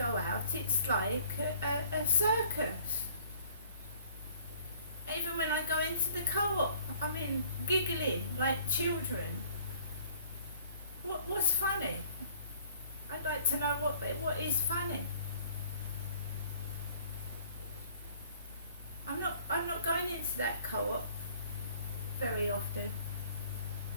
out, it's like a circus. Even when I go into the co-op, giggling like children. What's funny? I'd like to know what is funny. I'm not going into very often.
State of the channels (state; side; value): inverted; both; correlation -0.56